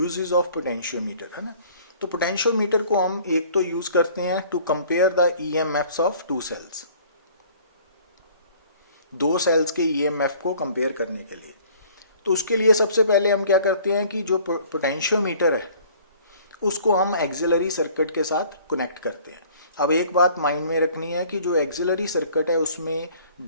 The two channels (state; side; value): inverted; both; correlation -0.53